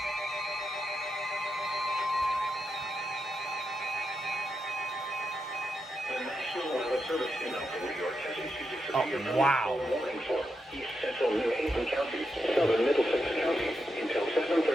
The National Weather Service in New York has issued a severe wow. thunderstorm warning for East Central New Haven County, Southern Middlesex County until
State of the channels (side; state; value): both; normal; correlation 0.85